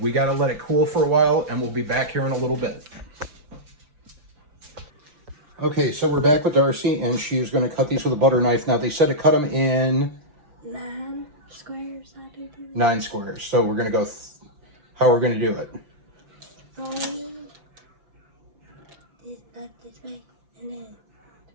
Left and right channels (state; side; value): late; left; 6.0 ms